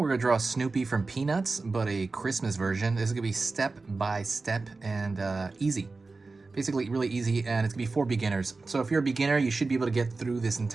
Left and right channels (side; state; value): left; quieter; 3.8 dB